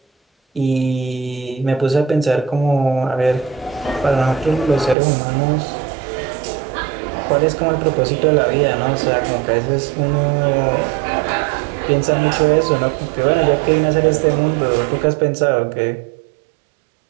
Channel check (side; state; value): left; drops out; at 5.0 s